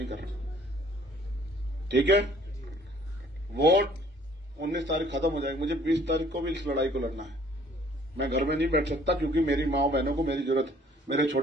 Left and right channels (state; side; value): normal; both; correlation 0.57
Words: कर रहे। ठीक है, वोट 19 तारीख खत्म हो जाएगी। मुझे 20 तारीख को भी इस लड़ाई को लड़ना है। मैं घर में नहीं बैठ सकता क्योंकि मेरी माँ बहनों को मेरी जरूरत है। मेरे